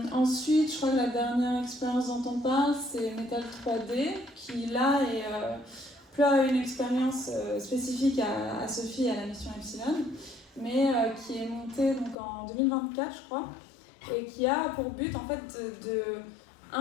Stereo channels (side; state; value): right; drops out; at 12.2 s